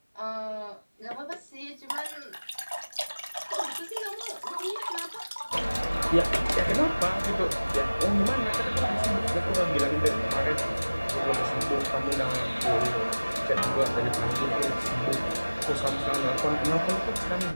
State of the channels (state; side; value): inverted; both; correlation -1.00